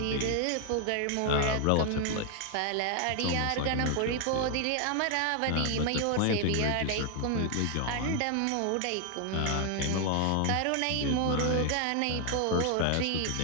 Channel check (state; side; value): different; both; correlation 0.00